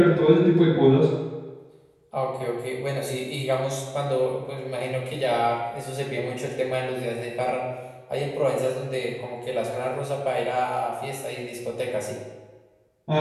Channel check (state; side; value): identical; both; correlation 1.00